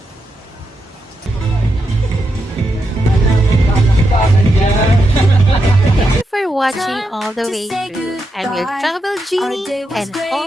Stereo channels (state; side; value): normal; both; correlation 0.84